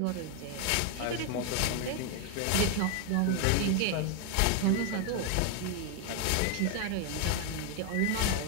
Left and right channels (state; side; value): different; both; correlation 0.01